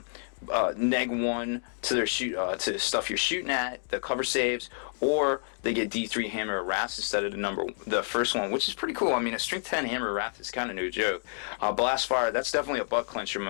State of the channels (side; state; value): right; silent; digital silence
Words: to their to stuff you're shooting at, the cover saves, or they get D3 Hammer of Wrath instead of the first one, which is pretty cool. I mean, a Strength 10 Hammer of Wrath is kind of no joke. Blast Fire, that's definitely a butt clencher